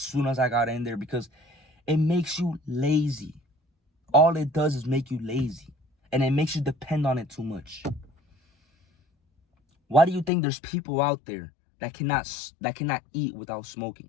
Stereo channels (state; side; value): drops out; right; at 10.3 s